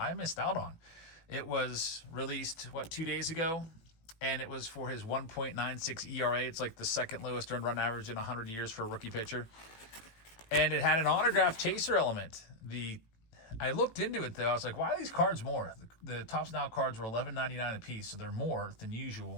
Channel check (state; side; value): late; right; 18 ms